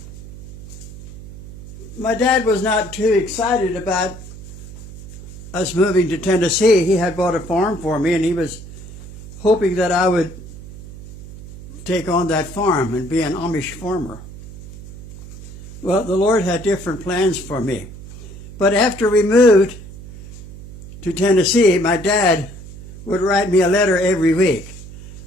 My dad was not too excited about us moving to Tennessee. He had bought a farm for me, and he was hoping that I would take on that farm and be an Amish farmer. Well, the Lord had different plans for me. But after we moved to Tennessee, my dad would write me a letter every week.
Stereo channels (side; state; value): right; noise; hum, 15 dB below the sound